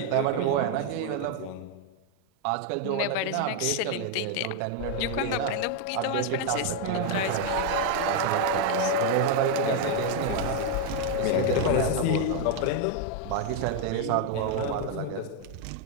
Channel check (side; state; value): both; different; correlation 0.01